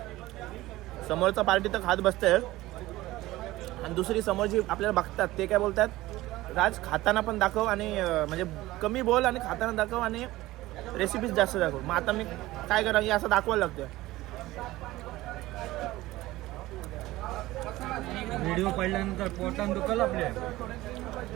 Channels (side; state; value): left; quieter; 17.6 dB